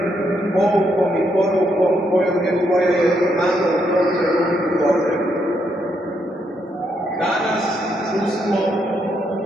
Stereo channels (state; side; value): normal; both; correlation 0.77